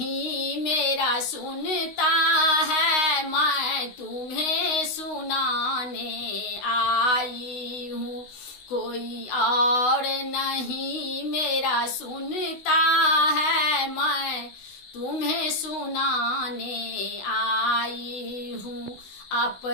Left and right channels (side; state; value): right; late; 16 ms